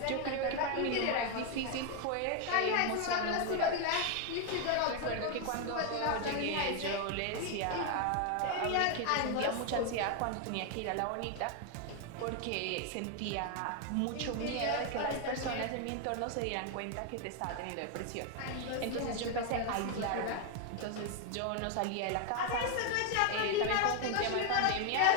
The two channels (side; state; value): both; different; correlation 0.01